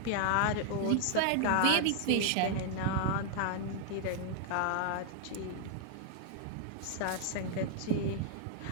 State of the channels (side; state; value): both; different; correlation 0.00